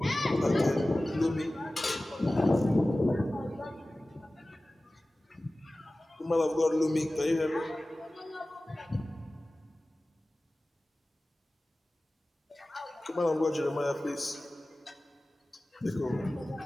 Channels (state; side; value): normal; both; correlation 0.97